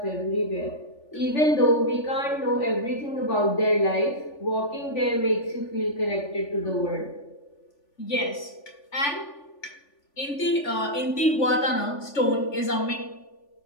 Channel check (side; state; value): right; late; 3.4 ms